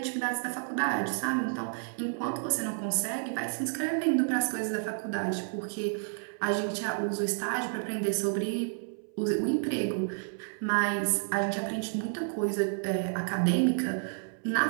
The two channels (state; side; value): silent; left; 58 dB below the other